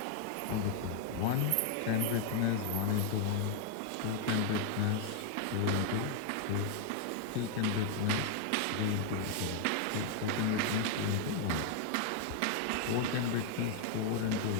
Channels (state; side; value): different; both; correlation 0.00